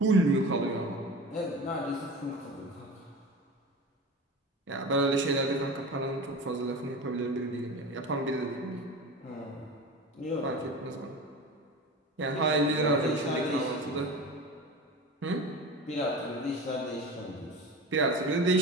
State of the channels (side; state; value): both; normal; correlation 0.32